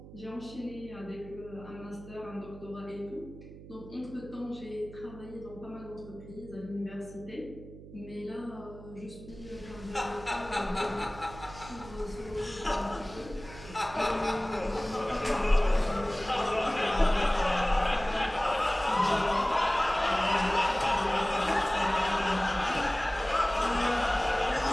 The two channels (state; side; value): noise; right; hum, 16 dB below the sound